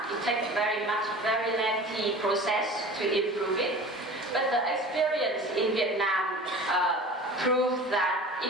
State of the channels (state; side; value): normal; both; correlation 0.39